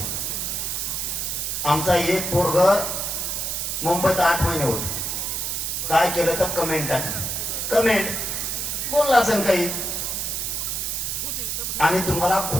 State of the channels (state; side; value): noise; right; hiss, 2 dB below the sound